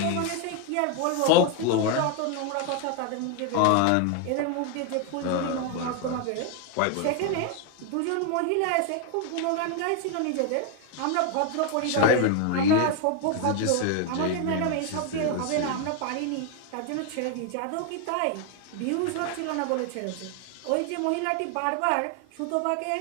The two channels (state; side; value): different; both; correlation 0.01